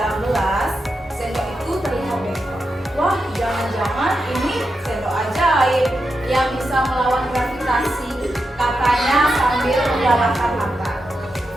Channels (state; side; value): normal; both; correlation 0.87